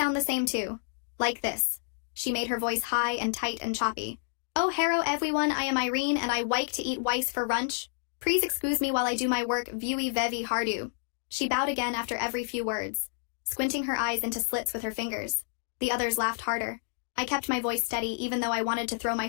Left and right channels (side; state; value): right; silent; digital silence